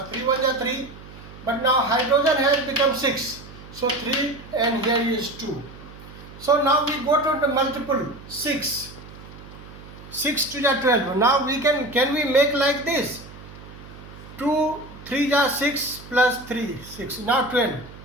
3 1s are 3, but now hydrogen has become 6, so 3 and here is 2. So now we go to the multiple 6 to the 12. Now we can we make like this? 2 3 are 6 plus 3 6, now 12.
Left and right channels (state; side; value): noise; right; hum, 17 dB below the sound